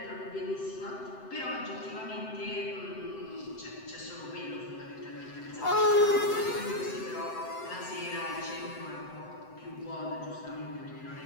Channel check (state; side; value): late; right; 7.8 ms